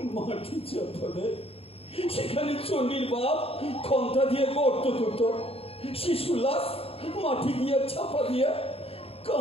মাটি চাপা, সেখানে চন্ডীর বাপ খন্তা দিয়ে গর্ত করত, শিশু লাশ মাটি দিয়ে চাপা দিয়ে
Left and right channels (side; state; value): right; late; 0.28 ms